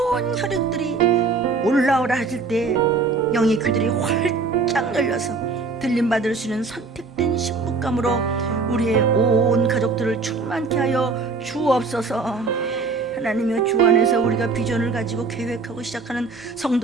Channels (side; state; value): left; quieter; 4.2 dB